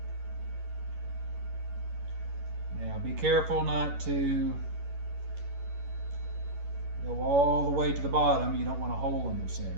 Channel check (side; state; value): left; late; 11 ms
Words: Now be careful not to go all the way to the bottom. You don't want a hole in the center.